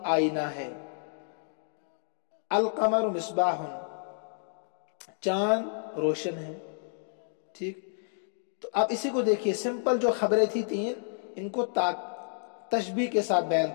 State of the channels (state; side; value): silent; right; digital silence